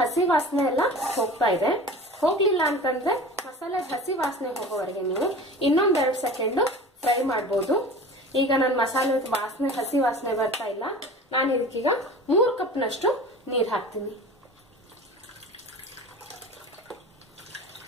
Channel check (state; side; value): normal; both; correlation 0.38